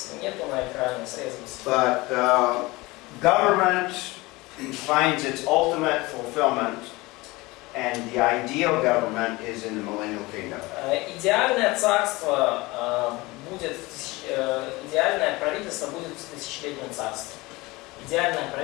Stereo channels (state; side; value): quieter; right; 22.1 dB